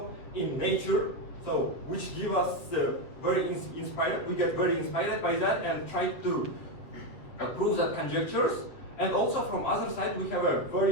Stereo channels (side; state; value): right; late; 7.5 ms